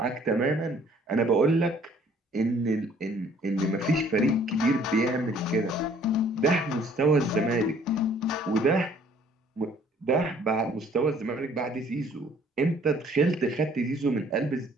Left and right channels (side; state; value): both; normal; correlation 0.58